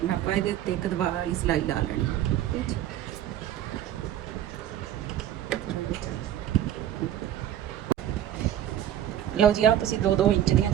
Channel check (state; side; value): quieter; left; 11.3 dB